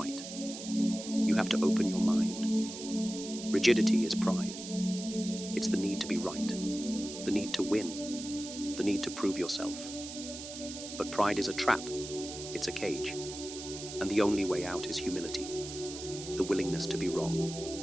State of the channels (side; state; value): right; noise; hiss, 10 dB below the sound